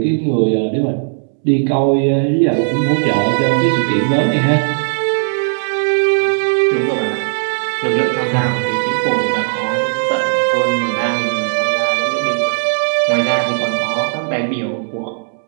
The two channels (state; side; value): silent; left; 69 dB below the other